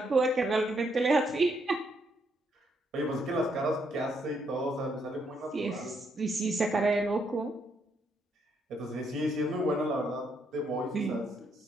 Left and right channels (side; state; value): both; normal; correlation 0.75